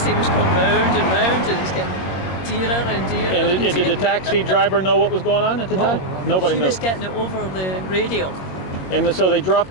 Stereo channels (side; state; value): right; late; 22 ms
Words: was going round and round, and it's getting dearer and dearer. And did the taxi driver know what was going on at the time? Nobody knew. She was getting it over the radio. And so they